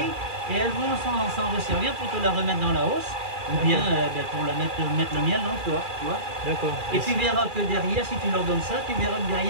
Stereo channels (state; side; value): late; left; 2.4 ms